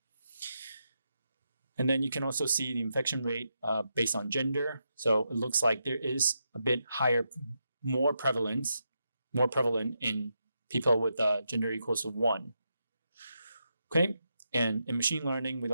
And then you can also see the infection rate based on gender. So it looks like there is a bit higher, more prevalent in people with gender equals to 1. Okay, and in machine learning, we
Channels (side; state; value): both; inverted; correlation -0.85